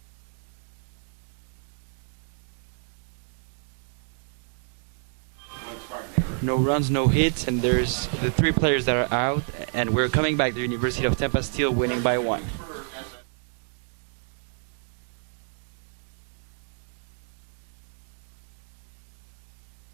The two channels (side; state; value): left; silent; 57 dB below the other